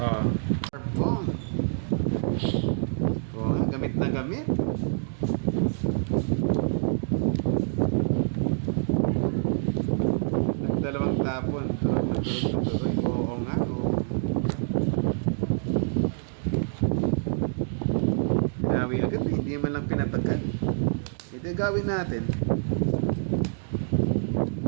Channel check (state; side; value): silent; left; digital silence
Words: Bong. Oo nga, gamit na gamit. Dalawang tapon. Turog na tuloy. Oo nga, oo. Pinawi agad eh. Hindi man lang pinatagal. Ito gawin natin.